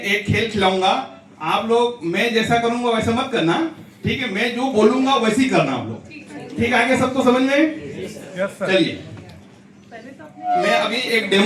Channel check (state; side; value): identical; both; correlation 1.00